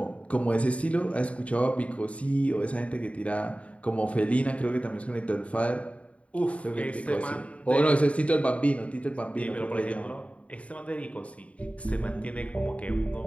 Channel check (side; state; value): right; late; 0.065 ms